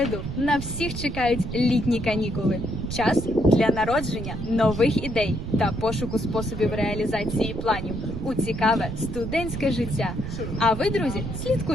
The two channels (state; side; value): noise; right; rumble, 6 dB below the sound